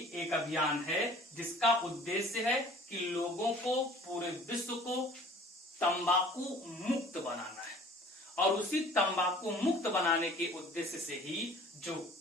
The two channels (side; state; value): both; normal; correlation 0.49